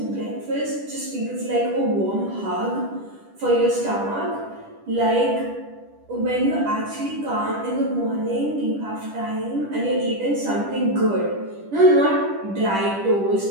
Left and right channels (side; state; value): left; late; 10 ms